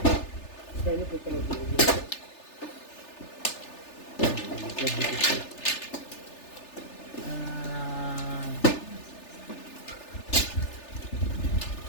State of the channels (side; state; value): right; late; 3.4 ms